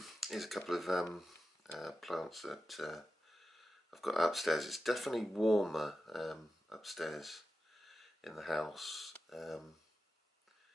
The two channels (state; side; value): normal; both; correlation 0.92